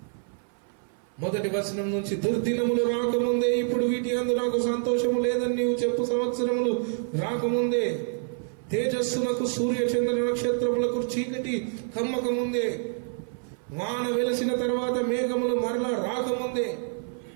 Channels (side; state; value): left; silent; 56 dB below the other